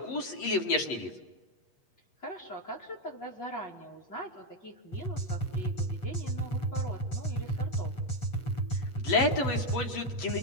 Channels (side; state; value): right; late; 8.3 ms